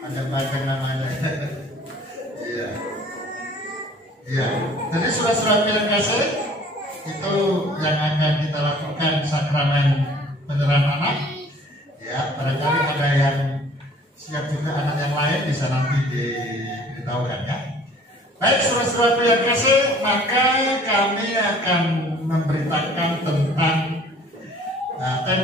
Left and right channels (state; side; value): normal; both; correlation 0.52